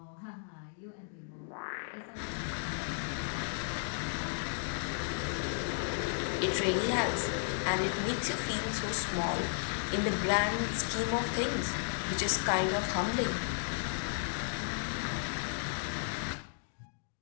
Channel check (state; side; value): silent; right; digital silence